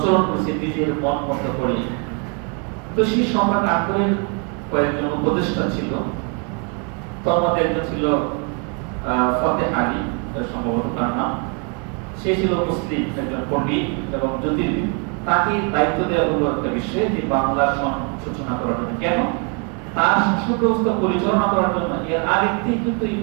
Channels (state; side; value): quieter; left; 35.6 dB